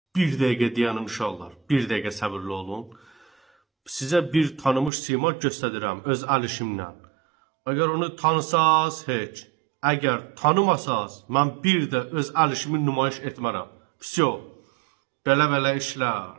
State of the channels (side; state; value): left; drops out; at 4.9 s